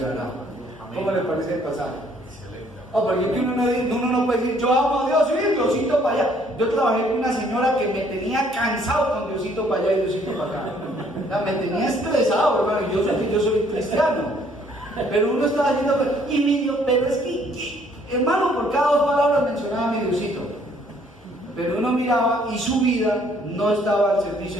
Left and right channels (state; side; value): normal; both; correlation 0.63